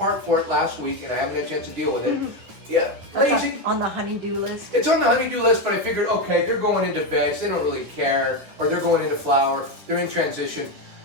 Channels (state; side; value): late; left; 10 ms